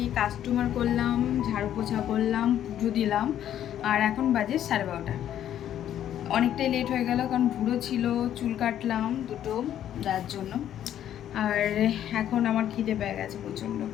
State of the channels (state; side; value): quieter; right; 10.9 dB